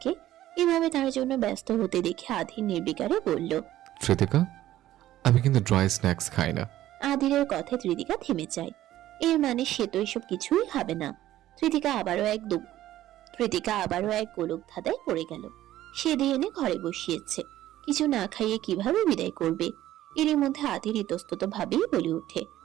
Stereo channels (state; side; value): quieter; left; 13.9 dB